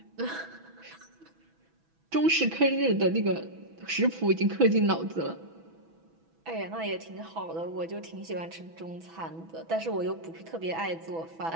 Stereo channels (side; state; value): left; late; 6.1 ms